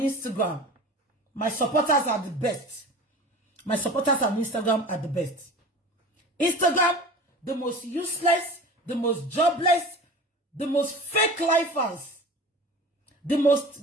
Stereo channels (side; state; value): both; normal; correlation 0.37